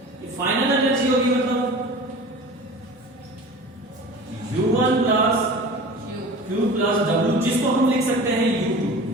फाइनल एनर्जी होगी मतलब U1 plus Q plus W, जिसको हम लिख सकते हैं U2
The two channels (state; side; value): normal; both; correlation 0.38